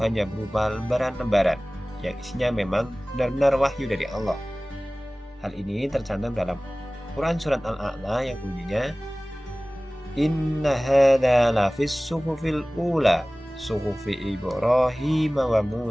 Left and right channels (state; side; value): normal; both; correlation 0.98